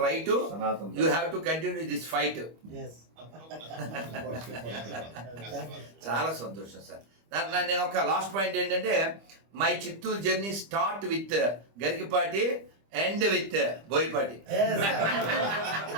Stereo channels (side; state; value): left; late; 25 ms